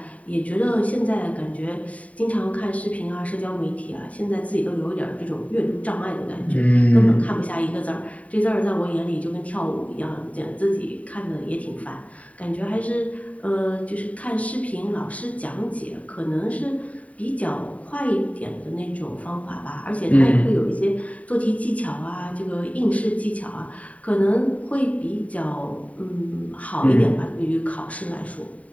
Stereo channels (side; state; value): right; late; 0.068 ms